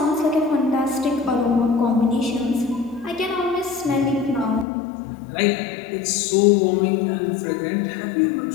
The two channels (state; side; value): drops out; right; at 4.7 s